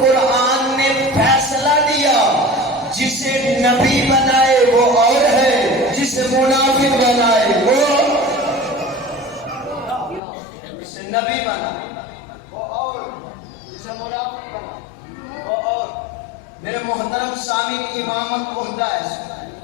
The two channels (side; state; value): right; drops out; at 10.2 s